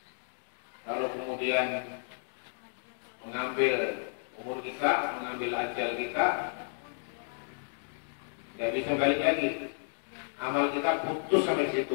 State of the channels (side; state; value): right; silent; digital silence